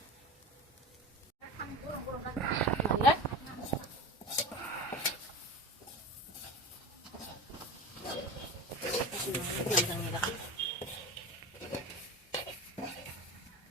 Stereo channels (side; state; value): both; normal; correlation 0.30